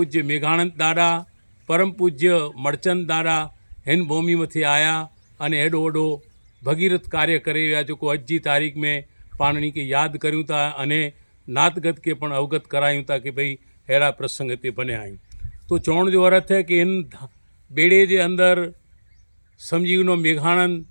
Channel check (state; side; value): inverted; both; correlation -1.00